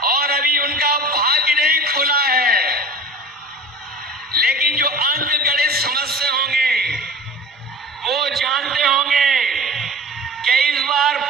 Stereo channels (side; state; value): both; normal; correlation 0.38